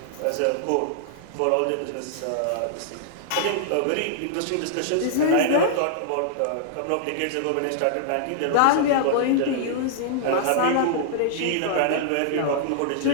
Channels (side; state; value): both; different; correlation -0.01